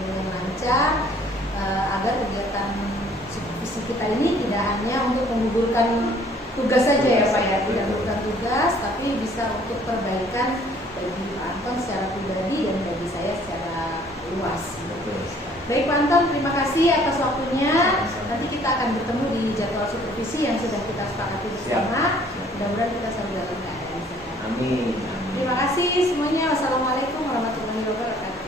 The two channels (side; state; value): both; normal; correlation 0.58